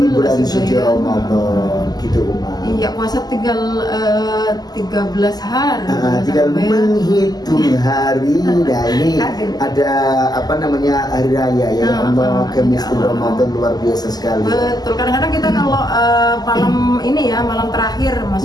bulan suci Ramadan gitu Uma. Iya, puasa tinggal 13 hari. Tinggal menghitung hari. Nah ini ada apa namanya, hari raya ya Allah, Kemistul Ramadan luar biasa sekali. Betul, kadang-kadang kita kalau malam ini ya, malam terakhir,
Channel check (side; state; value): right; late; 0.20 ms